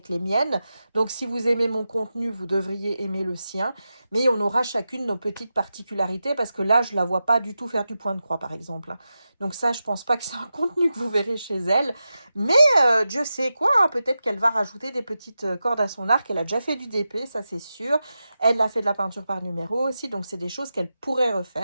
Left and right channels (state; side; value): inverted; both; correlation -0.91